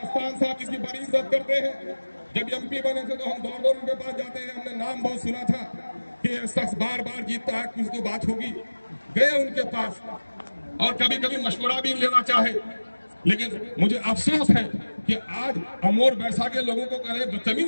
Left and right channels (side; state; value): both; inverted; correlation -1.00